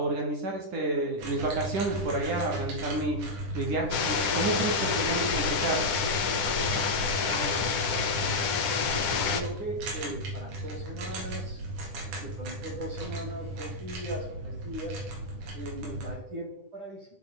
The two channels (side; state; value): left; late; 10 ms